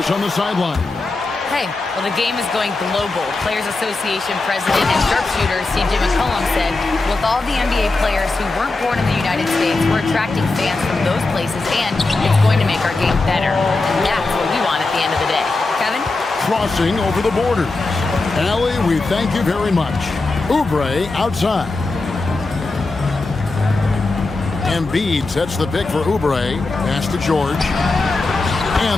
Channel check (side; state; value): right; quieter; 3.4 dB